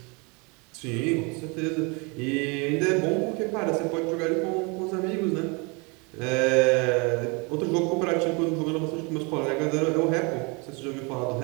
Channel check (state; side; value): quieter; left; 30.2 dB